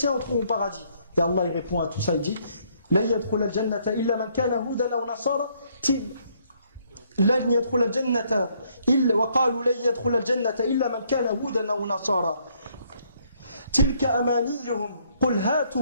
entreront au paradis. Et Allah il répond à tout ça, il dit لا يدخل الجنة إلا من كان هودا أو نصارى لن يدخل الجنة إلا وقالوا لن يدخل الجنة إلا من كان هودا أو نصارى تلك أمانيهم قل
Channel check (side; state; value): both; inverted; correlation -0.68